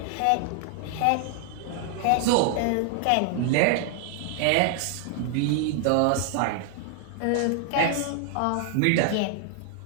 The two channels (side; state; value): both; different; correlation 0.00